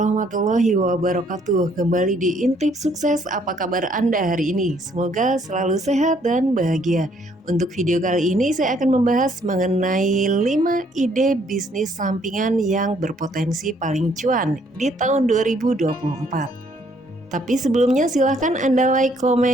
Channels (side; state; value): both; normal; correlation 0.66